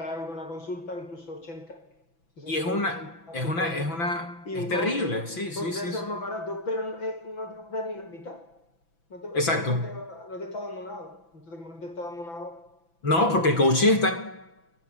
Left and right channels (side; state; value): right; late; 6.0 ms